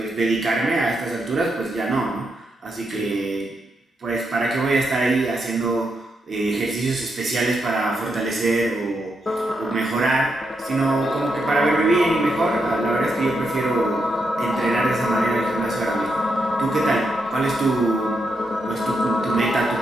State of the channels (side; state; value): both; normal; correlation 0.82